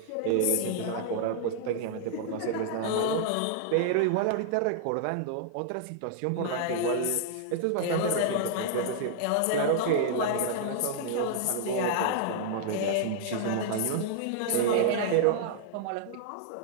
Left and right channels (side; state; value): both; different; correlation -0.01